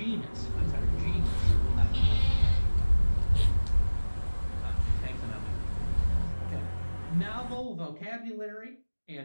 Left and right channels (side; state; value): both; inverted; correlation -1.00